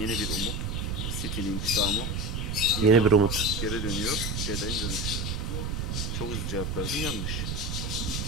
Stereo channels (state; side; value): noise; right; rumble, 2 dB below the sound